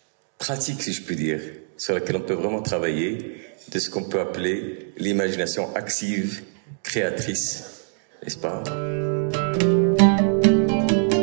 pratique, si je puis dire, sur laquelle on peut vraiment travailler, de ce qu'on peut appeler l'imagination active, créatrice, n'est-ce pas?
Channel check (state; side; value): silent; left; 63 dB below the other